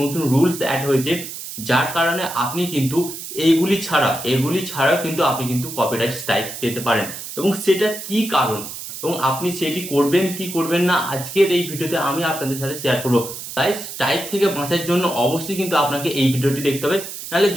রুলস অ্যাড হয়েছে, যার কারণে আপনি কিন্তু এগুলি ছাড়াও কিন্তু আপনি কিন্তু কপিরাইট স্ট্রাইক পেতে পারেন। এবং সেটা কি কারণ এবং আপনি সেটি করবেন কি করবেন না আজকের এই ভিডিওতে আমি আপনাদের সাথে শেয়ার করবো। তাই স্ট্রাইক থেকে বাঁচার জন্য অবশ্যই কিন্তু আপনাকে এই ভিডিওটি দেখতে হবে, নাহলে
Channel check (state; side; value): noise; right; hiss, 9 dB below the sound